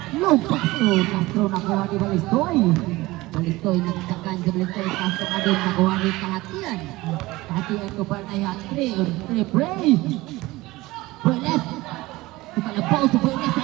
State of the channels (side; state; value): left; quieter; 19.7 dB